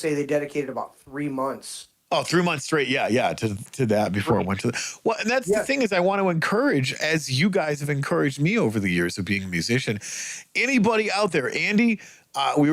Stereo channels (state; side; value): identical; both; correlation 1.00